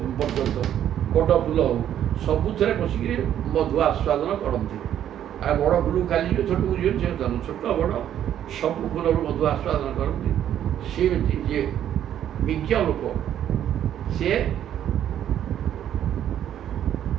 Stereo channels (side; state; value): left; quieter; 10.6 dB